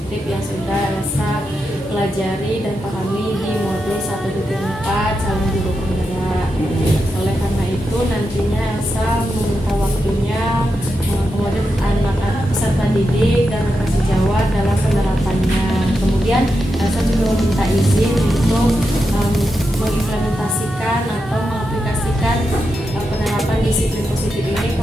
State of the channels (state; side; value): normal; both; correlation 0.87